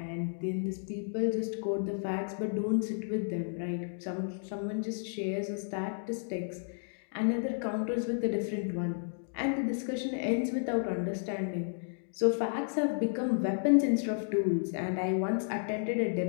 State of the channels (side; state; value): right; silent; digital silence